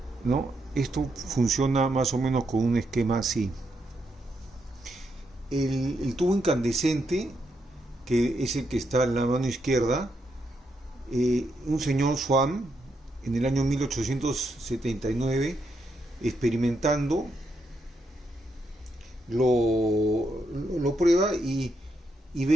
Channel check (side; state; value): both; normal; correlation 0.80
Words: ¿no? Esto funciona más o menos con un esquema así. El tubo incandescente, que es el que está en la mano izquierda, un señor Swan en el año 1879, experimentando, lo prueba y